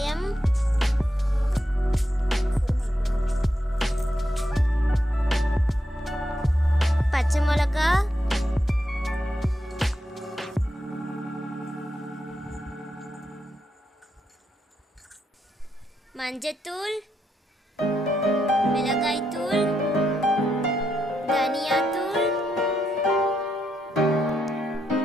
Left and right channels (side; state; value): both; normal; correlation 0.82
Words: பச்சை மிளகா, மஞ்சத்தூள், மிளகாய்த்தூள், தனியாத்தூள்,